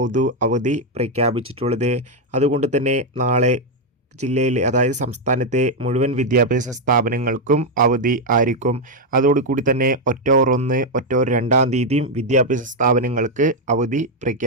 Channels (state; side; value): normal; both; correlation 0.02